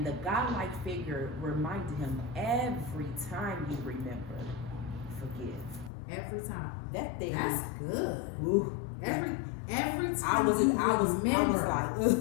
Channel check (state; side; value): drops out; right; at 5.9 s